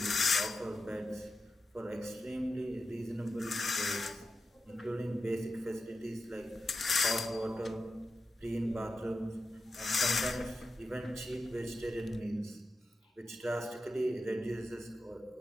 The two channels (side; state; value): both; normal; correlation 0.90